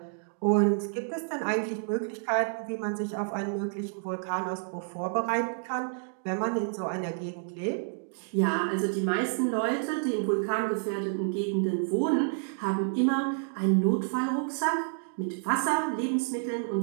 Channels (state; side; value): silent; left; digital silence